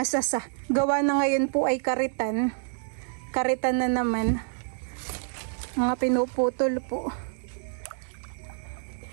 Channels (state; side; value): silent; left; digital silence